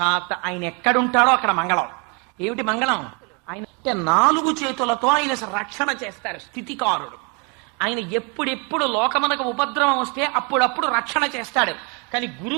ఆయన ఎక్కడుంటాడో అక్కడ మంగళం. ఏమిటి మంగళం? ఆయన 4 చేతులతో ఆయన రక్షణ చేస్తారు, స్థితికారుడు. ఆయన ఎప్పుడెప్పుడు లోకమునకు ఉపద్రవం వస్తే అప్పుడప్పుడు రక్షణ చేస్తాడు. కానీ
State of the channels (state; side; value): quieter; left; 33.3 dB